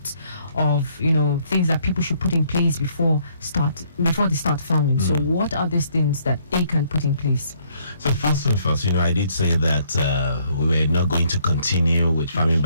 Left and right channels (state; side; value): inverted; both; correlation -0.67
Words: of, things that people should put in place before they start farming. So what are these things that they can put in place? So first and first, I did say that we were not going to continue with farming